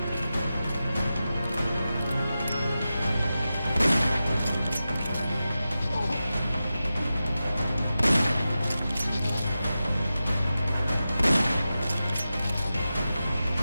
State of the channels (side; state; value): both; inverted; correlation -0.93